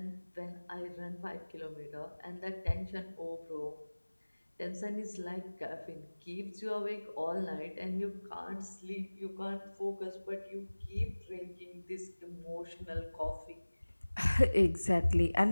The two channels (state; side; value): inverted; both; correlation -1.00